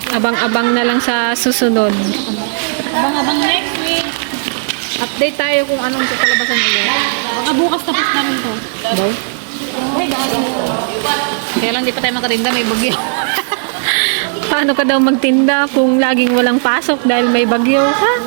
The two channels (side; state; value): left; silent; digital silence